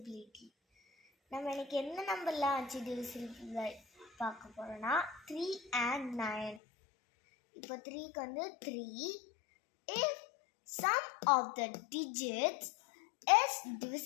நம்ம இன்னைக்கு என்ன நம்பர்லாம் வச்சு டிவிசிபிள் பார்க்க போகிறோம்னா 3 and 9. இப்போ 3க்கு வந்து 3. If sum of the digits is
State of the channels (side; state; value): right; drops out; at 6.6 s